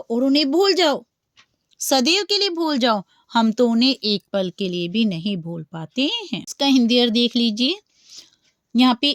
और उन्हें भूल जाओ, सदैव के लिए भूल जाओ। हम तो उन्हें एक पल के लिए भी नहीं भूल पाते हैं। इसका हिंदी अर्थ देख लीजिए। यहाँ पे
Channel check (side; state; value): both; identical; correlation 1.00